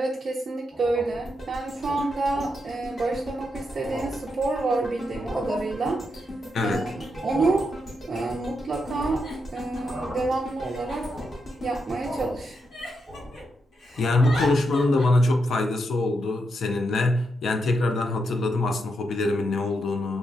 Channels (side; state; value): both; normal; correlation 0.83